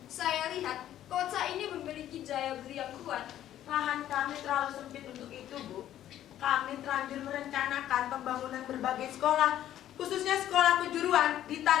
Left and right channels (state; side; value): quieter; right; 12.0 dB